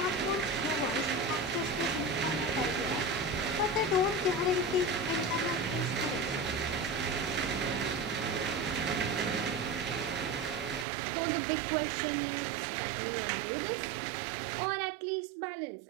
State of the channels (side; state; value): left; drops out; at 10.9 s